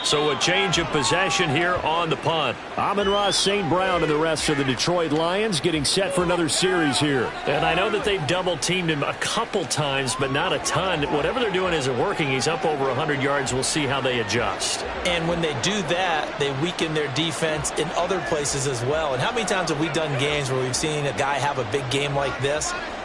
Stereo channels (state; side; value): identical; both; correlation 1.00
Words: So a change of possession here on the punt. Amon-Ra St. Brown and the rest of the Detroit Lions getting set for another series here. And I know that they've double-teamed him a couple times, but not a ton. Whatever they're doing isn't working. He's up over 100 yards. We'll see how they adjust. And when they do that, they weaken their defense in other places as well. And how many times have we done games where we've seen a guy have a big game like this?